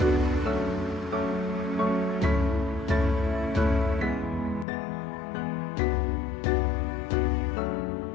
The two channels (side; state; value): right; drops out; at 4.7 s